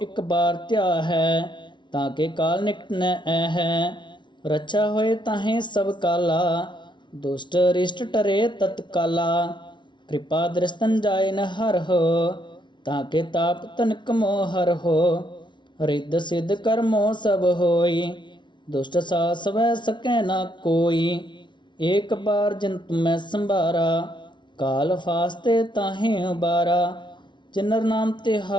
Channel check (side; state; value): right; late; 0.23 ms